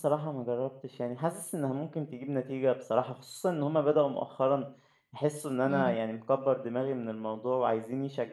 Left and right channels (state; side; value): identical; both; correlation 1.00